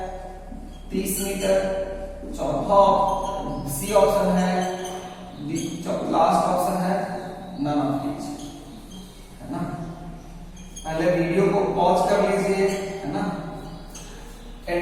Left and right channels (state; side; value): identical; both; correlation 1.00